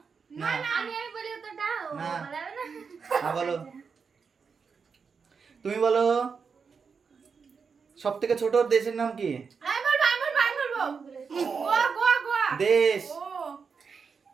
না আমি বলি উত্তরটা ও না। বলাবে না। হ্যাঁ বলো। তুমি বলো সব থেকে ছোট দেশের নাম কি? আমি বলবো গোয়া গোয়া গোয়া। দেশ। ও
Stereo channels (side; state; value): left; quieter; 5.6 dB